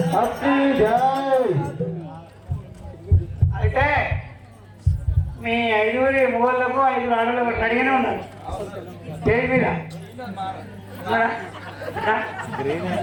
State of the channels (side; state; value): both; identical; correlation 1.00